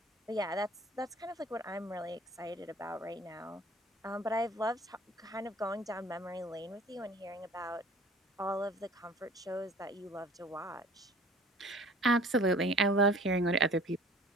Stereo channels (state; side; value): normal; both; correlation 0.49